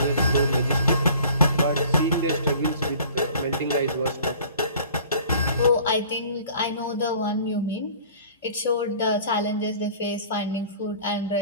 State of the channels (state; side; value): inverted; both; correlation -0.48